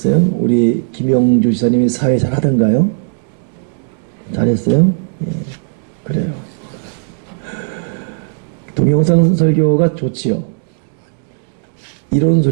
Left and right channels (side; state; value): left; silent; digital silence